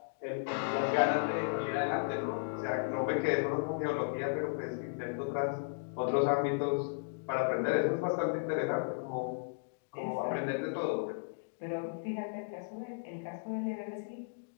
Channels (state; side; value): silent; right; digital silence